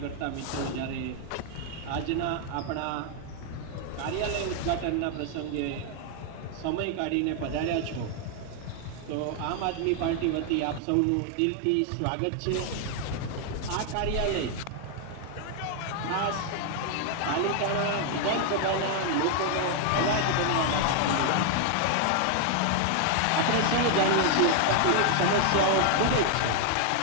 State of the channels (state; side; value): different; both; correlation 0.00